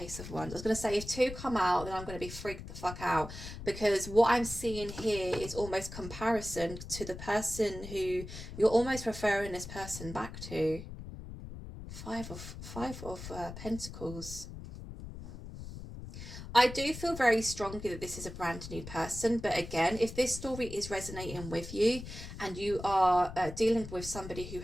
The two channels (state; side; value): noise; left; rumble, 11 dB below the sound